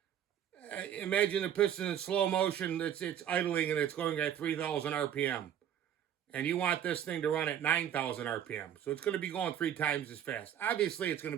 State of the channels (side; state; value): left; quieter; 10.0 dB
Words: imagine the piston in slow motion, it's idling and it's going at 3,000 RPM. And you want this thing to run at 9,000 RPM. So it's going to be going 3 times as fast. Obviously, it's going